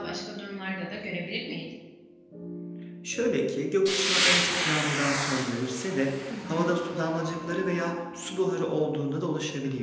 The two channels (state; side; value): identical; both; correlation 1.00